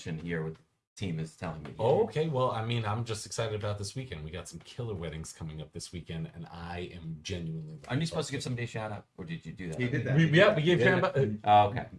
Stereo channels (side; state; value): both; identical; correlation 1.00